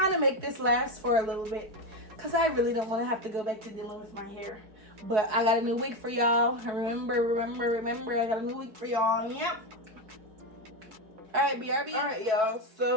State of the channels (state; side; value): late; left; 4.6 ms